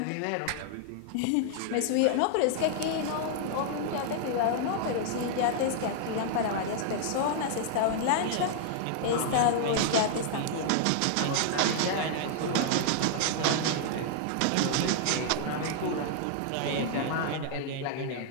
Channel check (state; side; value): different; both; correlation 0.00